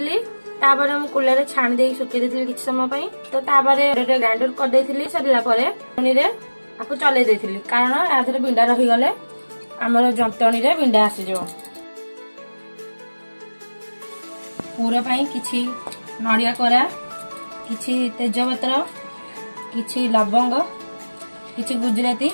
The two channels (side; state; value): both; inverted; correlation -1.00